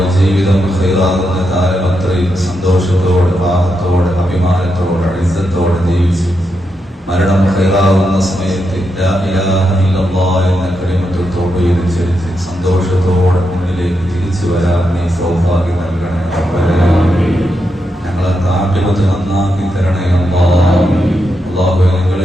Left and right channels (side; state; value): both; normal; correlation 0.84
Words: ജീവിതം ഖൈറാകുന്ന കാലം അത്രയും സന്തോഷത്തോടെ, റാഹത്തോടെ, അഭിമാനത്തോടെ, ഇസ്സത്തോടെ ജീവിച്ച് മരണം ഖൈറാകുന്ന സമയത്ത് ലാ ഇലാഹ ഇല്ലല്ലാഹ് എന്ന കലിമത്തുൽ തൗഹീദ് ചൊല്ലി സന്തോഷത്തോടെ മുന്നിലേക്ക് തിരിച്ചു വരാൻ നീ സൗഭാഗ്യം നൽകണേ റബ്ബേ. ഞങ്ങളെ ആഖിറത്ത് നന്നാക്കി തരണേ അല്ലാഹ്. അല്ലാഹുവേ,